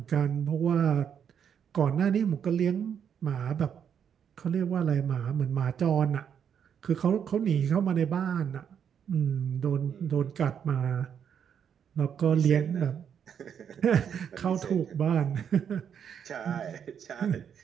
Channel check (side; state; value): left; quieter; 8.0 dB